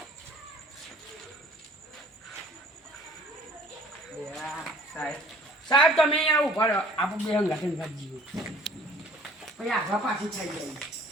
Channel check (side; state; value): both; normal; correlation 0.53